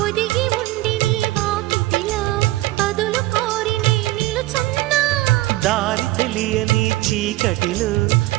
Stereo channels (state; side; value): quieter; left; 18.1 dB